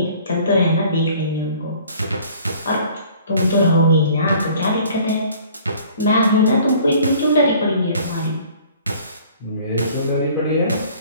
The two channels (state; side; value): inverted; both; correlation -0.53